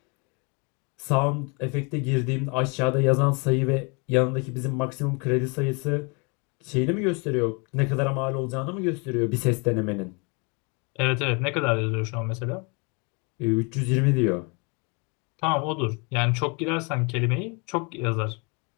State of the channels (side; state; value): right; quieter; 32.4 dB